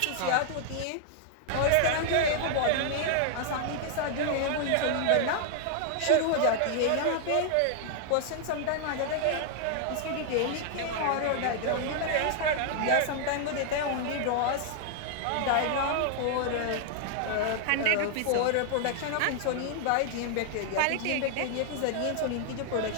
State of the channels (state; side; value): different; both; correlation 0.00